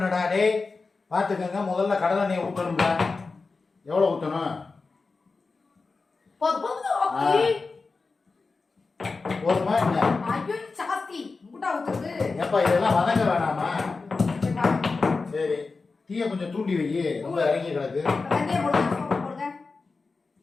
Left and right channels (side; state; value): right; quieter; 4.1 dB